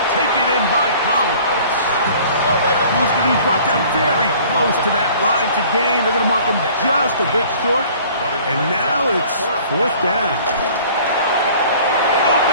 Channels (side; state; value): both; inverted; correlation -0.50